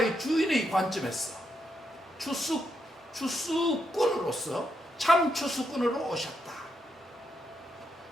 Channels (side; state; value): both; normal; correlation 0.81